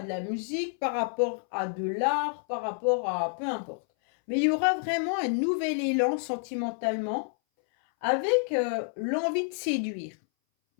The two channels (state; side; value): silent; right; 59 dB below the other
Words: de la musique, par rapport à de l'art, par rapport à peu importe. Mais il y aura vraiment un nouvel élan sentimentalement avec l'envie de séduire.